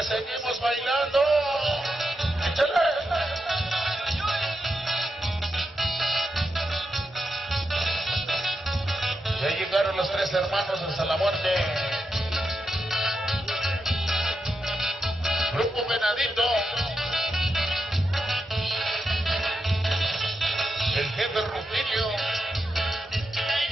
que seguimos bailando. ¡Échale! Ya llegaron los tres hermanos hasta la muerte. Grupo Venadito. El jefe Rutilio.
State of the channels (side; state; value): both; normal; correlation 0.86